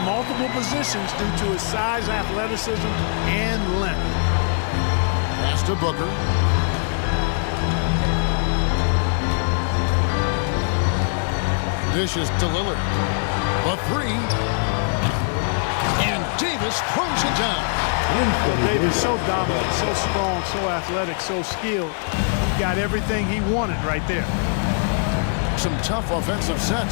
positions due to his size, athleticism, and length. Pass to Booker. Dishes to Lillard. The 3. And Davis throws it down. So Davis so dominant, so strong, so athletic, so skilled. He got everything he wanted right there. Some tough offensive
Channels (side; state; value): right; silent; digital silence